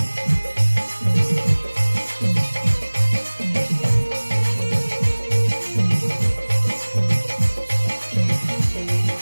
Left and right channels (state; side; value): inverted; both; correlation -1.00